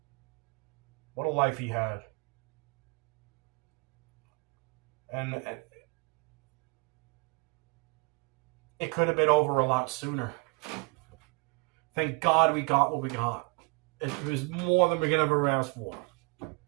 What a life he had. And it could have been over a lot sooner. Thank God we got what we got. It was more than we could ever ask for.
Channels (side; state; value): left; quieter; 32.1 dB